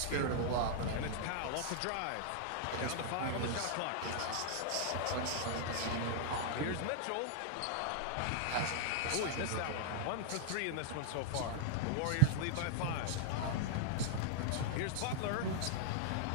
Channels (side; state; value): both; different; correlation -0.01